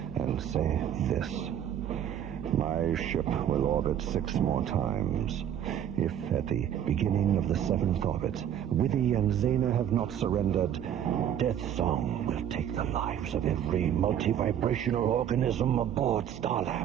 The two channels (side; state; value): left; quieter; 9.9 dB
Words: and say this. My ship will orbit 6 more times. If at the beginning of the 7th orbit, Withy and Zena have not surrendered, Deathsong will take the lives of every multi-vibrational organism aboard